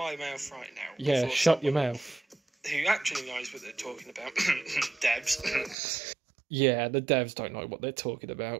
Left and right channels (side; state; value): left; drops out; at 5.8 s